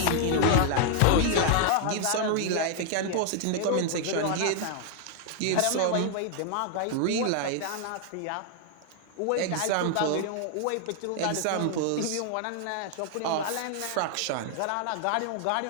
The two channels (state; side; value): different; both; correlation 0.00